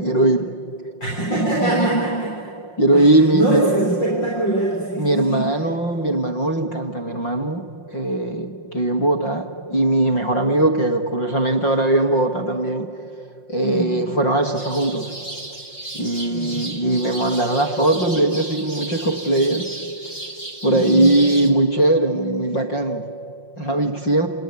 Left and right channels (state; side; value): late; right; 5.6 ms